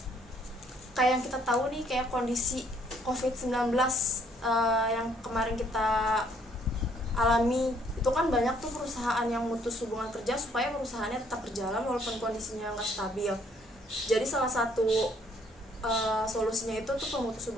Kayak yang kita tahu nih, kayak kondisi COVID-19 yang kemarin kita alami, itu kan banyak tuh perusahaan yang memutus hubungan kerja supaya perusahaannya tetap berjalan walaupun kondisinya nggak stabil. Jadi salah satu solusinya itu tuh pemutus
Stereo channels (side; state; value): both; normal; correlation 0.65